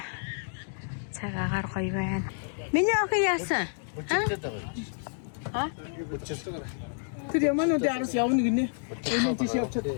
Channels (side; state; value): right; silent; digital silence